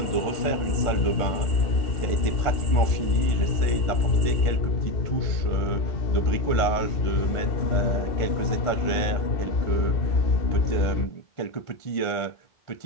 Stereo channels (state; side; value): late; right; 1.5 ms